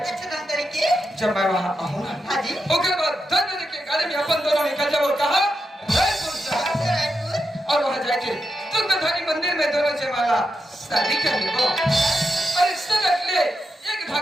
धन तरीके जब मैं वहाँ आऊँगा हाँ जी उसके बाद 10 बजे के गाड़ी में अपन दोनों निकल जाओ और कहा रायपुर जा अच्छा रायपुर और वहाँ जाके तुंगधारी मंदिर में दोनों जयमाला शादी कर लेबो और इससे लगले एक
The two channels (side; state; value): both; normal; correlation 0.87